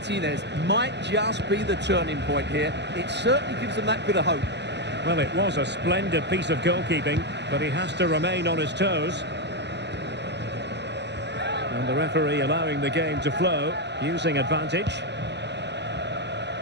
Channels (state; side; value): late; left; 0.50 ms